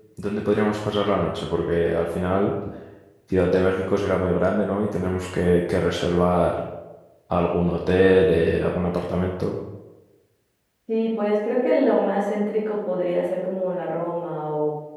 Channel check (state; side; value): identical; both; correlation 1.00